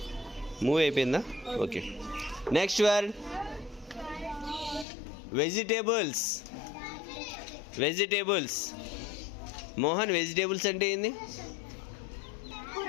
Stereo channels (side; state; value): right; drops out; at 4.9 s